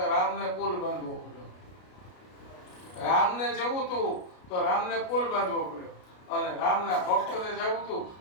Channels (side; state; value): right; late; 33 ms